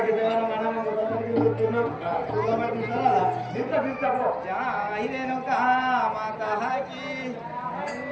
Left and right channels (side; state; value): both; identical; correlation 1.00